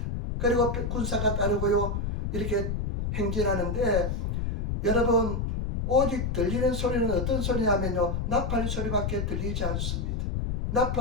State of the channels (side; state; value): left; noise; rumble, 1 dB below the sound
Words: 그리고 군사가 따르고요 이렇게 행진하는데, 여러분 오직 들리는 소리는 어떤 소리냐면요 나팔 소리밖에 들리지 않습니다.